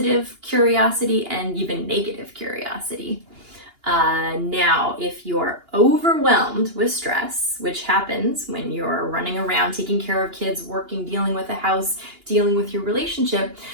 curiosity and even negative curiosity. Now, if you're overwhelmed with stress, which happens when you're running around taking care of kids, working, dealing with a house, dealing with your relationship,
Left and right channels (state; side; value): late; left; 2.8 ms